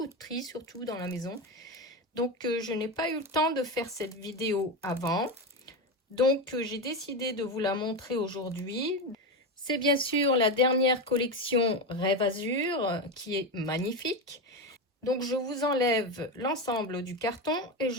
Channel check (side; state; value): both; normal; correlation 0.15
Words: de tri surtout dans la maison. Donc, je n'ai pas eu le temps de faire cette vidéo avant. Donc, j'ai décidé de vous la montrer aujourd'hui. C'est bien sûr la dernière collection Rêve Azur qui est magnifique. Donc, je vous enlève l'ensemble du carton et